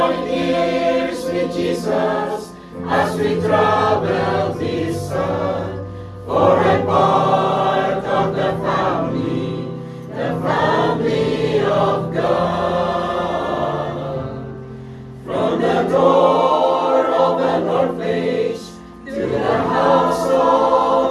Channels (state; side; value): identical; both; correlation 1.00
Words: ears with Jesus as we travel this earth. For I'm part of the family of God. From the door of an orphanage to the house